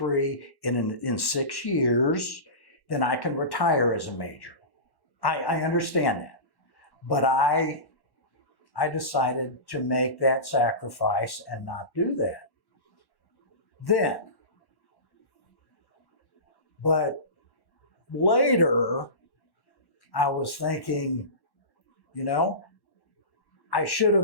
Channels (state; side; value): late; right; 1.1 ms